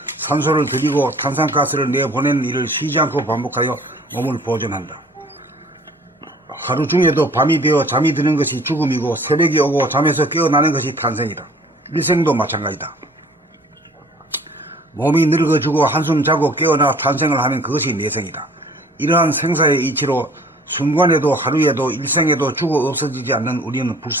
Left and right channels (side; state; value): both; normal; correlation 0.52